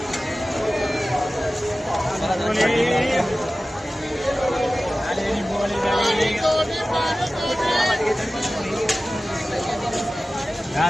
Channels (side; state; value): both; normal; correlation 0.96